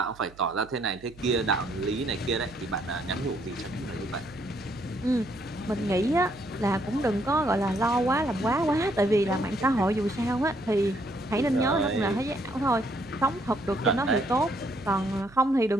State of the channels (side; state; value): right; noise; hum, 23 dB below the sound